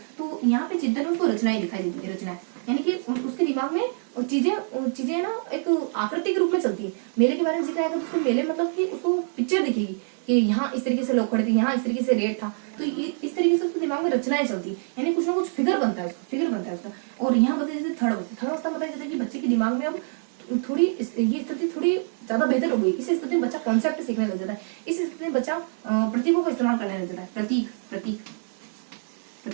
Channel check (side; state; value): left; silent; digital silence